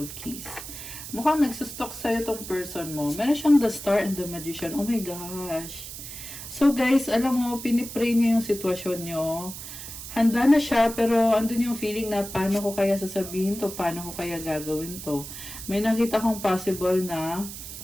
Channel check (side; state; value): right; noise; hiss, 10 dB below the sound